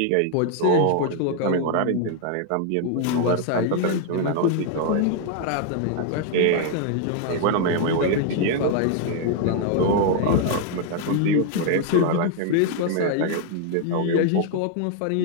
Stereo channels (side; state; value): both; different; correlation 0.00